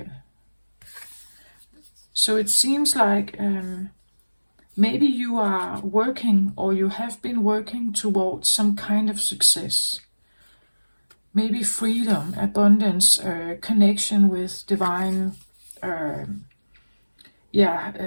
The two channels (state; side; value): inverted; both; correlation -1.00